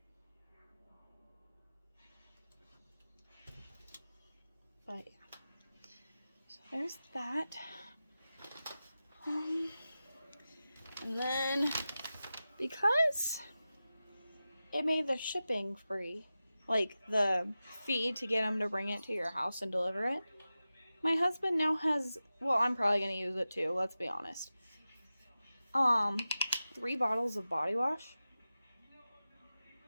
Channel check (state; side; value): inverted; both; correlation -0.94